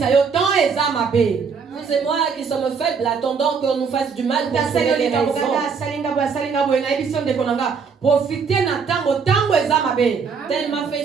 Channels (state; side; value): quieter; left; 5.7 dB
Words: Vous et moi qui sommes faibles, attendons qu'on nous fasse du mal pour trouver les raisons. Tel m'a